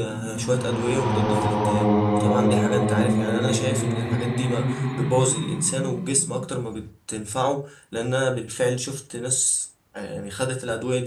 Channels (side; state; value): both; identical; correlation 1.00